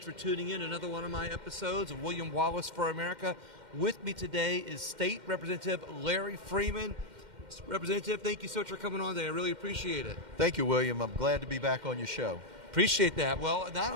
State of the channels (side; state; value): left; late; 2.1 ms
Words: for tuning in to another one of my episodes of William Wallace for America. With me today is State Representative Larry Frieman. Representative, thank you so much for coming on today. I really appreciate it. Thank you, William. I'm glad to be back on your show. Appreciate that. Well, not